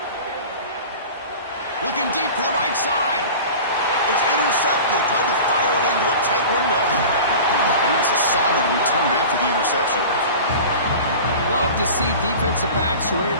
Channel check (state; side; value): inverted; both; correlation -0.36